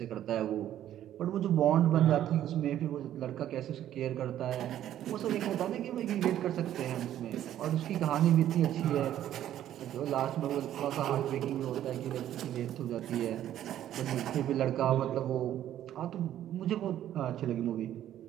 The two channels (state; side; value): quieter; left; 11.8 dB